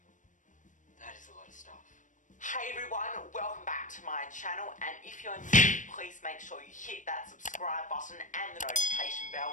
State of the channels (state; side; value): late; right; 0.37 ms